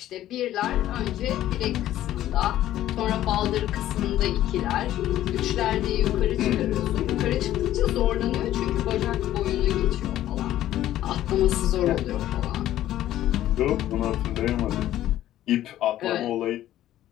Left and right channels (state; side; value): quieter; right; 13.2 dB